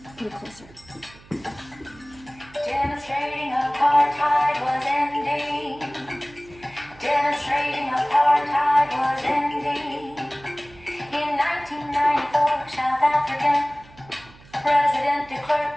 put it closer. Demonstrating apartheid was ending. Demonstrating apartheid was ending. In 1994, South African President de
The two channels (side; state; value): right; noise; hum, 24 dB below the sound